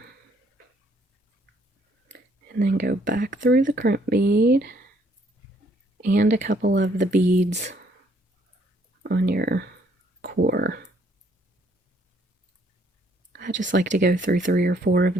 And then go back through the crimp bead and a couple of the beads on your core. I just like to go through 3 or 4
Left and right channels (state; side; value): normal; both; correlation 0.66